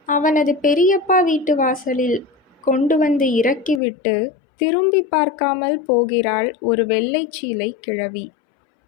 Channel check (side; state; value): right; drops out; at 3.8 s